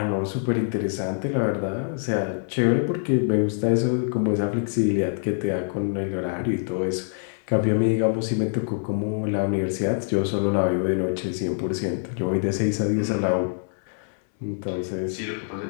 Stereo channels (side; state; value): right; silent; 62 dB below the other